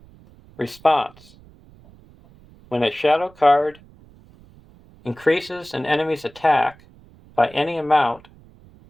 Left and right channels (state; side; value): noise; right; rumble, 26 dB below the sound